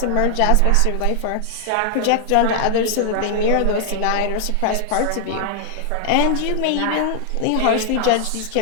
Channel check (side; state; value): both; different; correlation 0.00